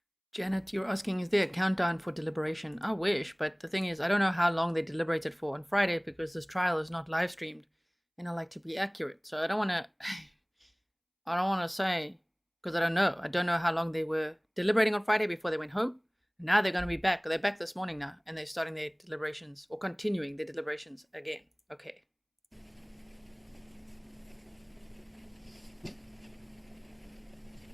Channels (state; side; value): identical; both; correlation 1.00